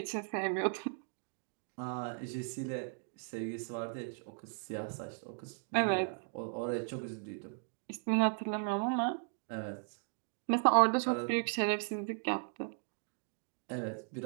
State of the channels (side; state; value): left; silent; 53 dB below the other